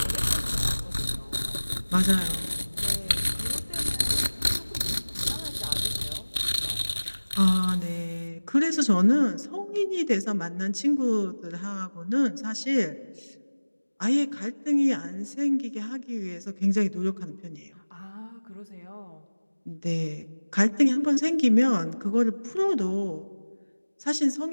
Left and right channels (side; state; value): both; inverted; correlation -1.00